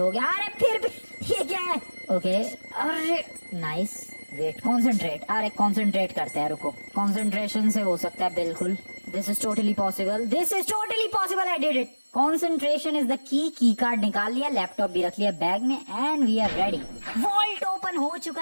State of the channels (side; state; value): both; inverted; correlation -1.00